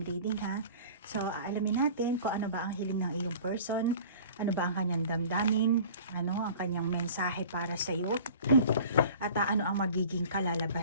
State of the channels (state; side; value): inverted; both; correlation -0.43